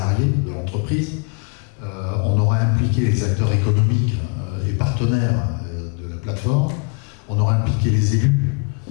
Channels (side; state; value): right; quieter; 34.6 dB